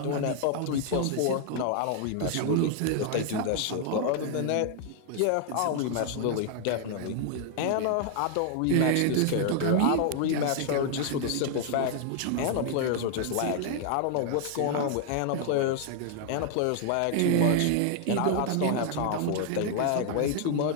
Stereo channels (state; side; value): different; both; correlation 0.00